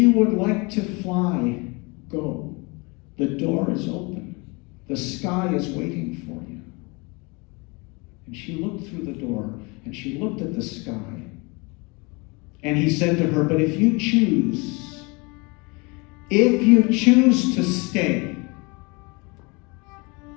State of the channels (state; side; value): quieter; right; 28.2 dB